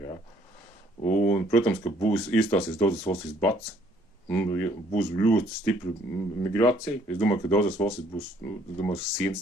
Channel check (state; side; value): normal; both; correlation 0.64